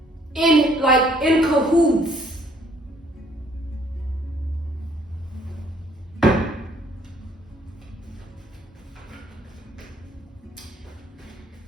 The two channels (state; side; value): normal; both; correlation 0.63